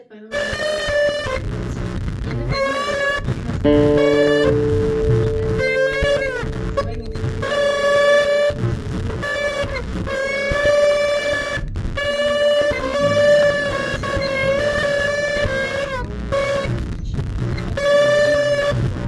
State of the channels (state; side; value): identical; both; correlation 1.00